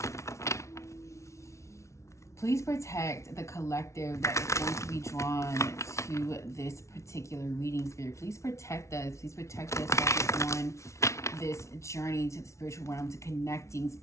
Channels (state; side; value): late; right; 0.14 ms